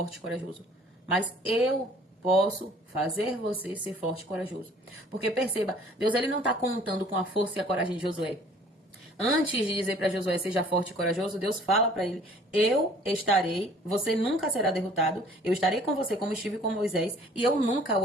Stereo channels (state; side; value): normal; both; correlation 0.54